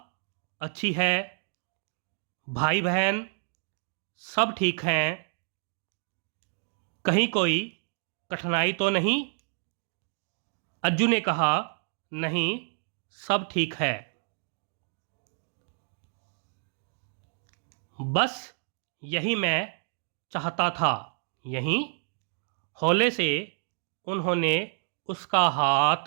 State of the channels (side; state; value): left; silent; 58 dB below the other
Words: अच्छी है। भाई बहन सब ठीक हैं? कहीं कोई कठिनाई तो नहीं? अज्जू ने कहा, नहीं, सब ठीक है। बस यही मैं चाहता था। यही? हौले से उन्होंने उसका